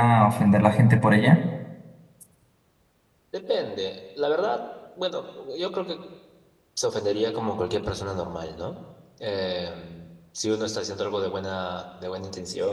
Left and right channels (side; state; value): both; identical; correlation 1.00